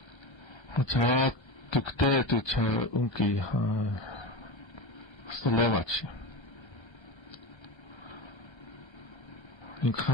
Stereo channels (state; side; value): late; right; 1.3 ms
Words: Hacha tukte tu cha unki Slovaci.